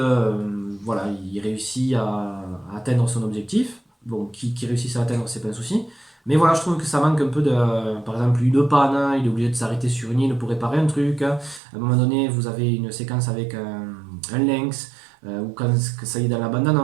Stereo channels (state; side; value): drops out; left; at 11.6 s